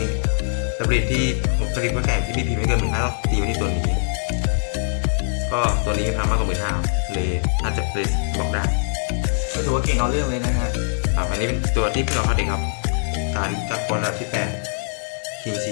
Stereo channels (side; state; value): right; silent; 64 dB below the other